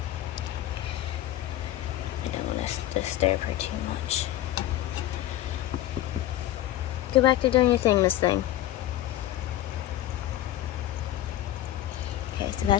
I don't want to disturb her too much. Go back to doing your thing, Miss Thing. Okay, so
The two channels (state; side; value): quieter; right; 13.7 dB